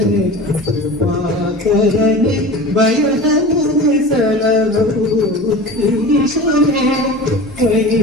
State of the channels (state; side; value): normal; both; correlation 0.35